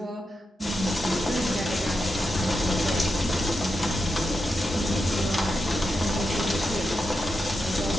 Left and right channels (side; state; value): both; normal; correlation 0.87